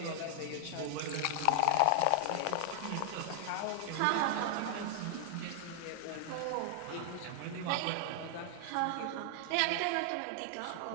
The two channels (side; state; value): both; different; correlation 0.00